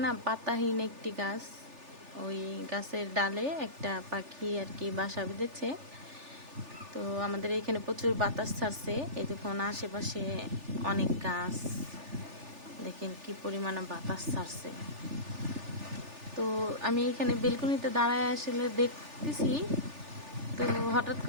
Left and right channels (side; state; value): left; late; 3.4 ms